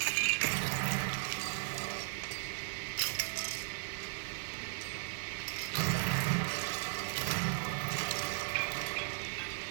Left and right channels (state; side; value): silent; left; digital silence